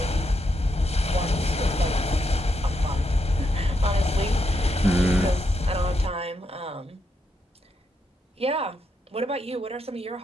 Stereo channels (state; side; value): normal; both; correlation 0.81